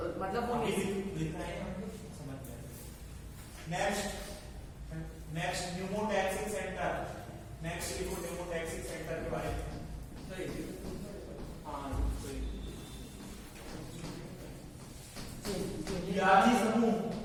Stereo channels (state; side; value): identical; both; correlation 1.00